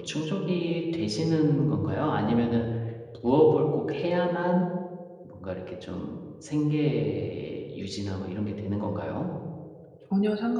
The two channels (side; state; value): both; identical; correlation 1.00